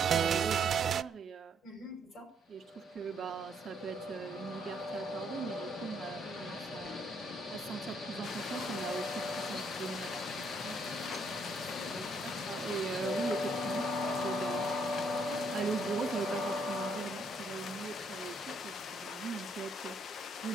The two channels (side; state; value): both; normal; correlation 0.70